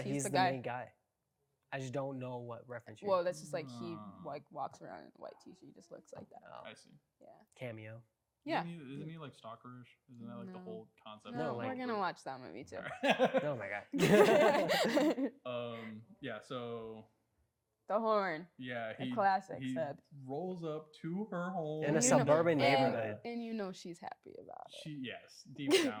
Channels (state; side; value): identical; both; correlation 1.00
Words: he's the the guy. main guy. I just don't know what reference you're. Well, that's just like he Ah. like walks around in a white t-shirt. He just looks like that. Oh, I see. Yeah. cameo. Yeah. Isn't he like stalkerish? Isn't that like the No. whole concept? No, No, of like- we're gonna watch that movie too. Oh my god. Yeah. So The horn. yeah, A he classic he set. rolls up to her home In a You know- suburban and- neighborhood. And you know she's happy about it. Yes, deep